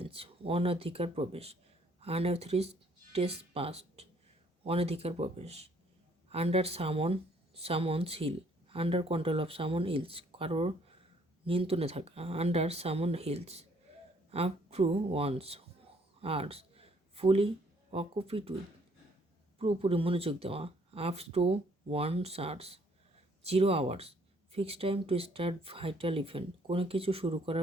অনধিকার প্রবেশ। আনঅথরাইজড ট্রেসপাস, অনধিকার প্রবেশ। Under someone's heel, under control of someone's heels, কারোর নিয়ন্ত্রণে থাকা। Under someone's heels, up to one's ears, fully occupied with, পুরোপুরি মনোযোগ দেওয়া। Up to one's ears, 0 hours, fix time to start vital event, কোনো কিছু শুরু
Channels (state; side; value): normal; both; correlation 0.64